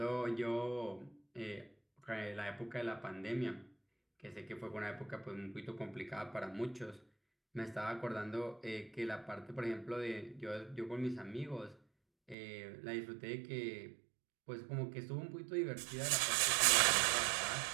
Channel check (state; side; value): drops out; left; at 12.4 s